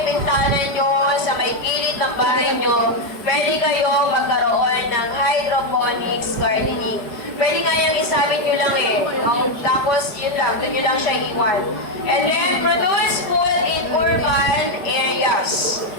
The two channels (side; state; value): right; late; 5.1 ms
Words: bintana nyo, sa may gilid ng bahay nyo, pwede kayong magkaroon ng hydroponics gardening. Pwede nga yung isabit nyo lang eh. No? Tapos, yun lang, doon nyo lang siya iwan. And then, produce food in urban areas.